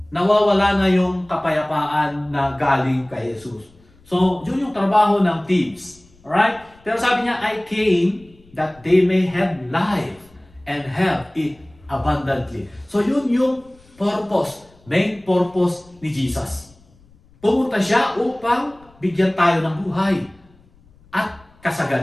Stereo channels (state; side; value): noise; left; rumble, 28 dB below the sound